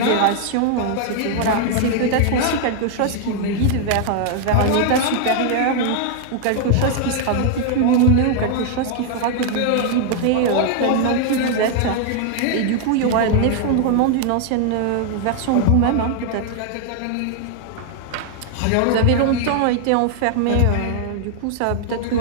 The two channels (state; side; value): different; both; correlation 0.00